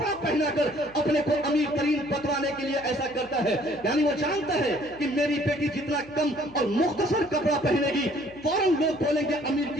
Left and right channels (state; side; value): noise; left; hum, 24 dB below the sound